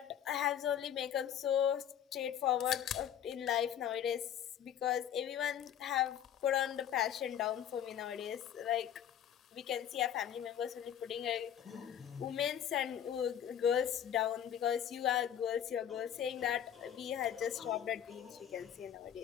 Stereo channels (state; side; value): quieter; right; 9.7 dB